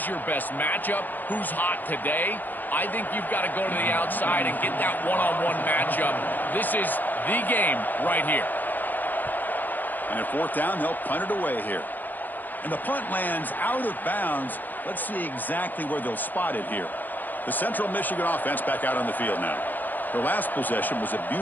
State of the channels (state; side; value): late; right; 0.086 ms